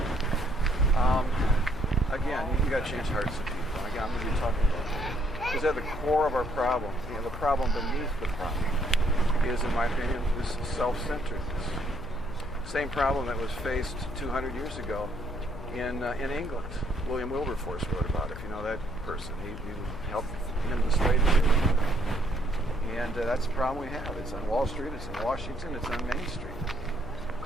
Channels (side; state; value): left; noise; hum, 12 dB below the sound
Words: Again, you got to change hearts of people. Again, I'm going to be talking about that. Because at the core of our problem, the problem beneath the problem is, in my opinion, this self-centeredness. Same problem that was faced 200 years ago in England. William Wilberforce wrote about it, if you know that person. He helped end the slave trade. And that's the problem we have. It's on Wall Street, it's in Washington, it's on Main Street.